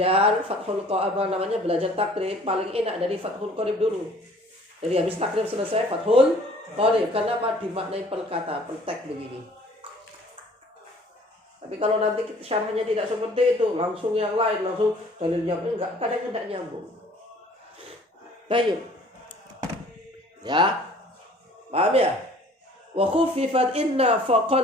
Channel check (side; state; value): both; normal; correlation 0.53